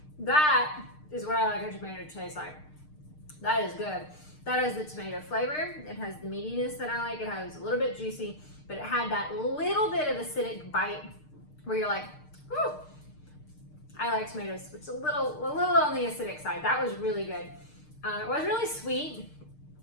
That is what I like a tomato to taste like. That is good. That has the tomato flavor. It has the meatiness that I like. It has a little bit juicy, but it had that little bit of acidic bite where you're like, whew. I like tomatoes. It's a little on the acidic side. That was really good. It was really sweet,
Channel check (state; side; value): late; right; 6.6 ms